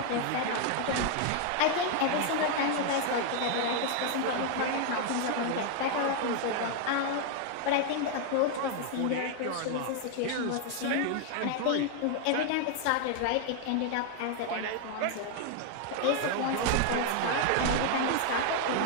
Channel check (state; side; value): different; both; correlation 0.00